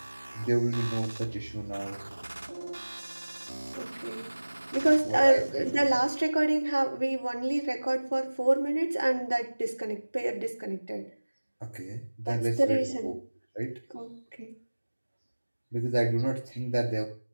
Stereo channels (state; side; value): inverted; both; correlation -1.00